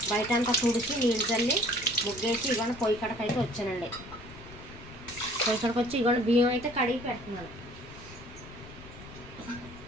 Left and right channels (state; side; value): noise; left; rumble, 17 dB below the sound